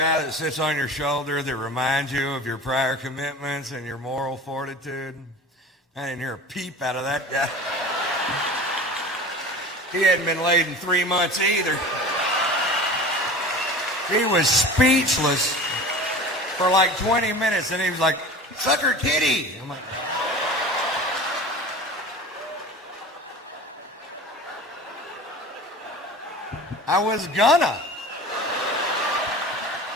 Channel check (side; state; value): both; normal; correlation 0.37